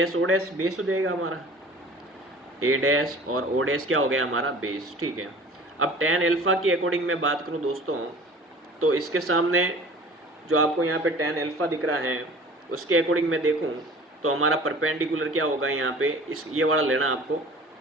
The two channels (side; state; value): both; normal; correlation 0.44